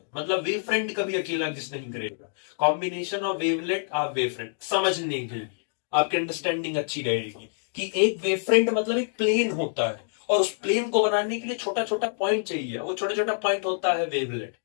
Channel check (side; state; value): right; silent; digital silence